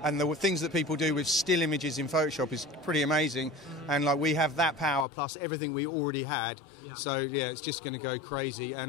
and the things that people do with still images in Photoshop is pretty amazing. And like we have that power plus everything we already had. Yeah. So yeah, it's just going to go crazy.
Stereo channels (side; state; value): right; drops out; at 5.1 s